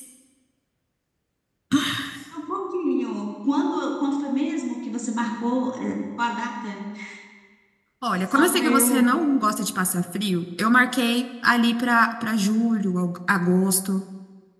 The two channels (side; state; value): both; identical; correlation 1.00